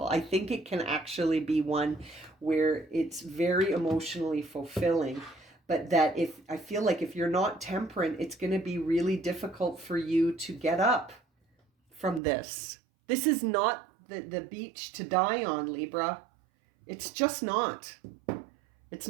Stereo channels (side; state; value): left; drops out; at 12.2 s